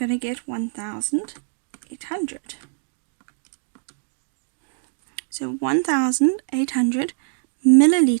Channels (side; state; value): left; silent; digital silence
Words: to get 1,800. So 1,800